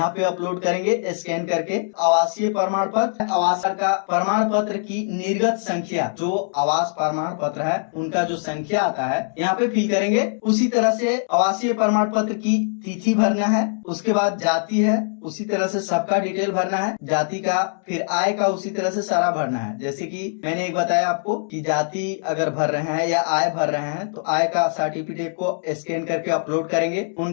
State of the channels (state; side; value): silent; right; digital silence